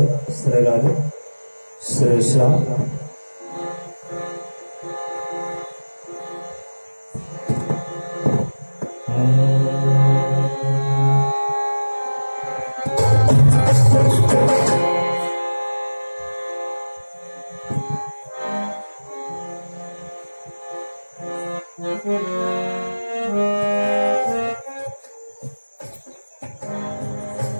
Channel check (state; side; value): inverted; both; correlation -1.00